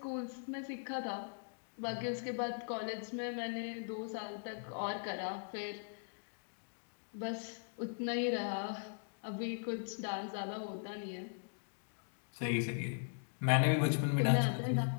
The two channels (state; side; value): silent; right; digital silence